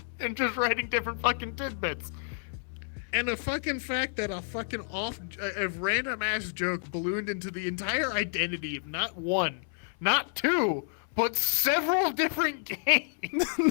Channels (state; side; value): silent; right; 58 dB below the other